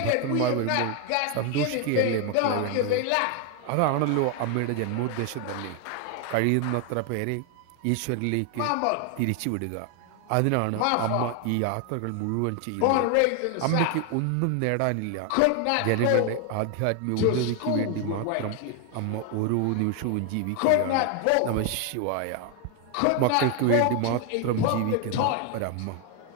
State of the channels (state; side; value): different; both; correlation 0.01